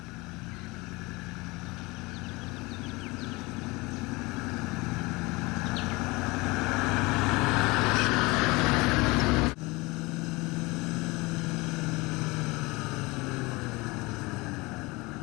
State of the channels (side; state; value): right; quieter; 23.8 dB